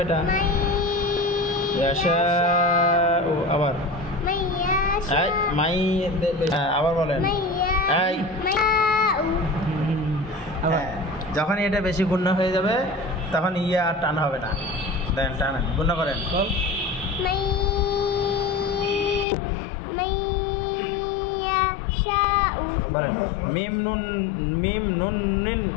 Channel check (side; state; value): right; drops out; at 19.2 s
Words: এটা। ইয়াশাউ, আবার মাই, আবার বলেন। যখন এটা বেশি গুণনা হয়ে যাবে তখন ইয়া আর টান হবে না। দেন টানেন, গুণনা করেন। বলেন মিম নুন মিম নুন নিন